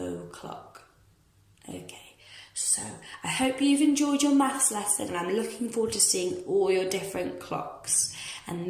Okay, So I hope you've enjoyed your maths lesson, and I'm looking forward to seeing all your different clocks. And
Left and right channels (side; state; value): both; identical; correlation 1.00